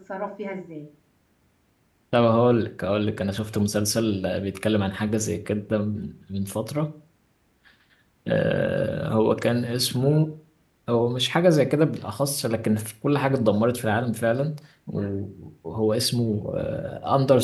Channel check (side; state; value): both; identical; correlation 1.00